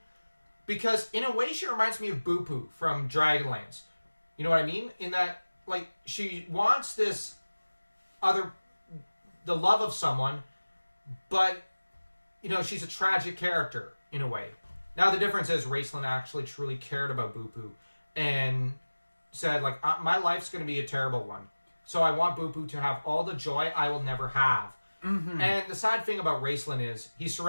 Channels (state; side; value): inverted; both; correlation -1.00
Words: because in a way she reminds me of Boo Poo from Dragonlance. You know what I mean? In that, she wants the love of someone, but she's a tragic character in a way. Now, the difference is Raceland actually truly cared about Boo Poo and said, my life's going to be a terrible one. So I want Boo Poo to have all the joy I will never have. Mm-hmm. And the sad thing about Raceland is he's